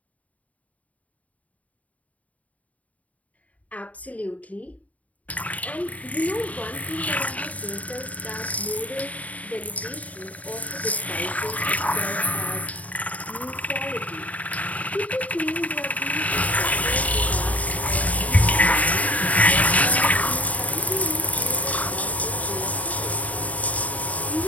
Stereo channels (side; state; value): right; late; 0.070 ms